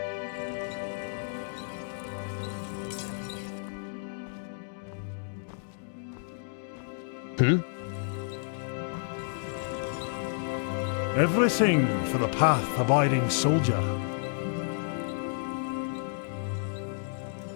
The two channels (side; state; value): right; silent; digital silence